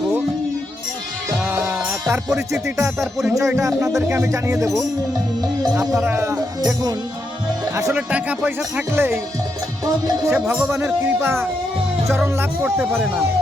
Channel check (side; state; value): both; normal; correlation 0.82